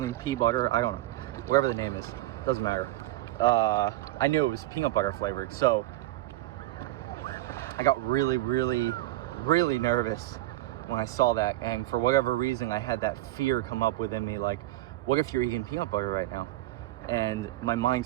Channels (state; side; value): quieter; left; 16.6 dB